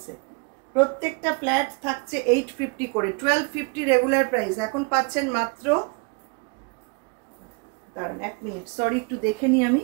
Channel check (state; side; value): quieter; left; 32.7 dB